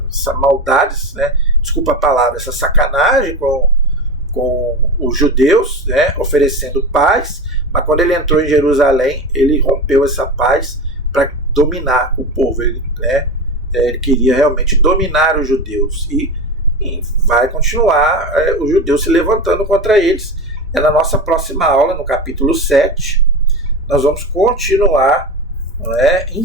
maldades, né? Desculpa a palavra, essa sacanagem com os judeus, né? Oferecendo paz, mas quando ele entrou em Jerusalém, ele rompeu essa paz para dominar o povo. Ele queria realmente dominar os judeus. E, e vai continuar os judeus se levantando contra eles. Na nossa próxima aula, no capítulo 7, nós vamos continuar, não é,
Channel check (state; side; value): normal; both; correlation 0.24